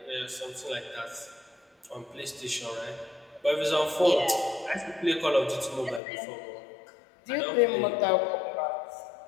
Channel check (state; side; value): drops out; right; at 6.0 s